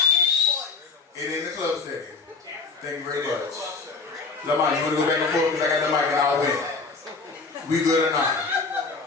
It in the club setting. Thank you very much. Lamont, you want to go back and forth because I got the mic and I'll win. We good or not?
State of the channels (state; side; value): quieter; right; 4.3 dB